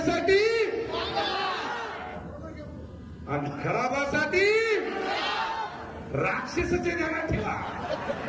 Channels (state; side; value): identical; both; correlation 1.00